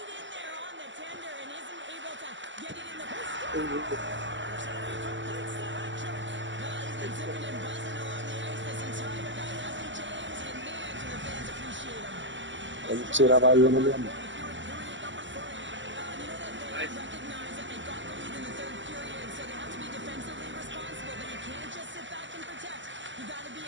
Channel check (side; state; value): left; late; 0.54 ms